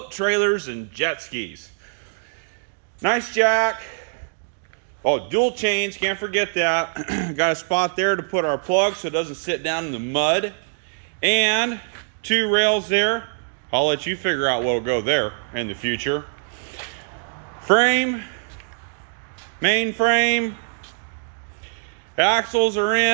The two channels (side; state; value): left; silent; digital silence